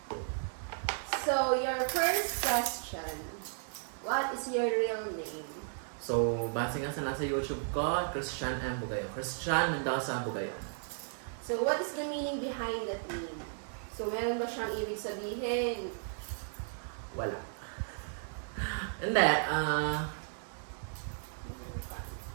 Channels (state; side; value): silent; left; digital silence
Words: So, your first question. What is your real name? So, base nga sa nasa YouTube ko, Christian M. Bugayon. Christian Mendoza Bugayon. So, what is the meaning behind that name? So, meron ba siyang ibig sabihin? Wala. Hindi,